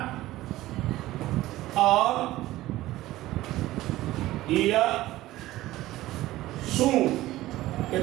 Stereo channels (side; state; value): left; quieter; 16.4 dB